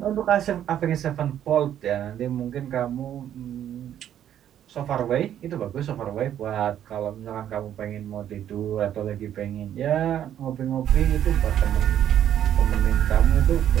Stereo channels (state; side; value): quieter; left; 10.5 dB